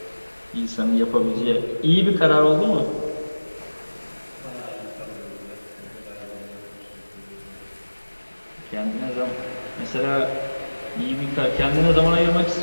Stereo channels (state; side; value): inverted; both; correlation -1.00